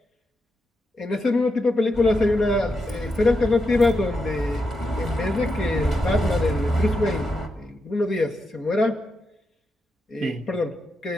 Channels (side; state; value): both; normal; correlation 0.86